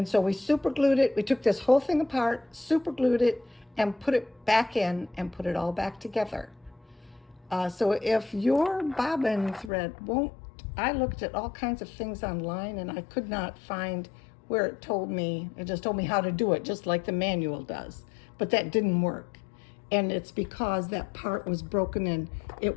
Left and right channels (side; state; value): right; drops out; at 9.7 s